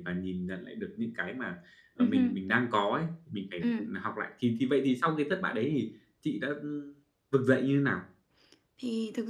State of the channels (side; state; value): both; identical; correlation 1.00